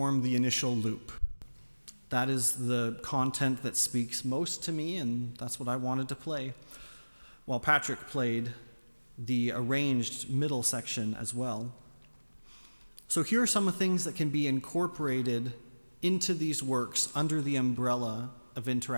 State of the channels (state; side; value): inverted; both; correlation -1.00